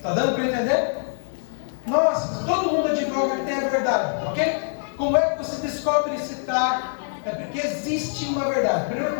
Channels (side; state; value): right; silent; digital silence